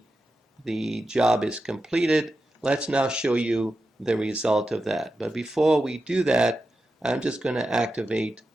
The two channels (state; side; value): normal; both; correlation 0.90